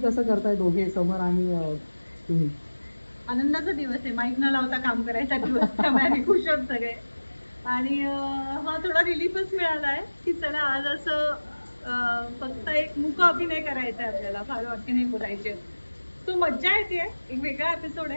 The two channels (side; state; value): both; inverted; correlation -1.00